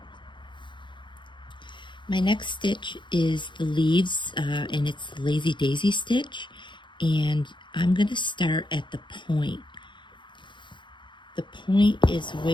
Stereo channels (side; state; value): right; late; 0.23 ms